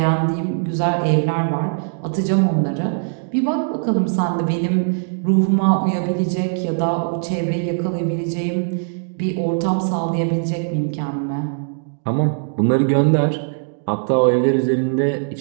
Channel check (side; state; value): left; silent; digital silence